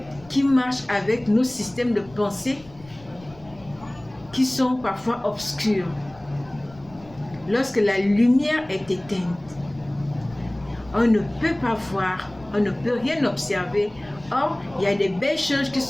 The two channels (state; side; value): noise; left; rumble, 23 dB below the sound